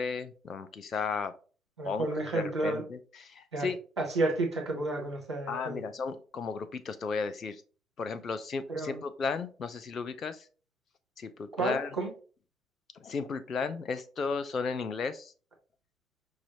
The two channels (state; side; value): normal; both; correlation 0.69